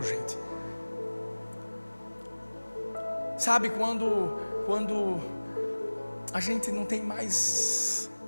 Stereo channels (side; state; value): both; inverted; correlation -1.00